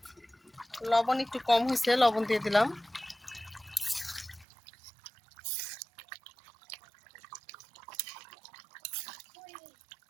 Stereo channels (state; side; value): drops out; left; at 4.5 s